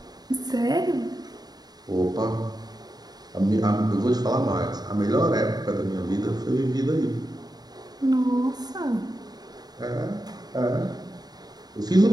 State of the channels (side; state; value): left; late; 0.19 ms